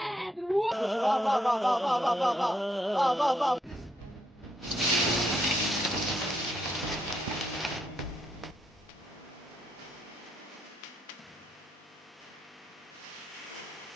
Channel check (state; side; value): normal; both; correlation 0.76